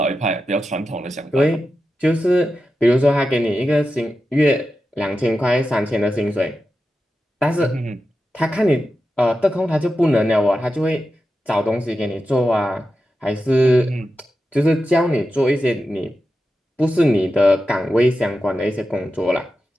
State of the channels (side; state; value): both; normal; correlation 0.91